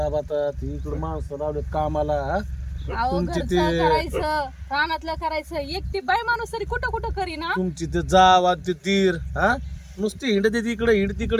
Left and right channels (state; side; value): identical; both; correlation 1.00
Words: इकडे माणसं लावले कामाला. अहो तुमची घरचं ते करायचं, रानातलं करायचं. एकटी बाई माणूस तरी कुठं कुठं करीना. तुमची ते जाव ते तीर हा नुसती हिंड ते तिकडे हिंड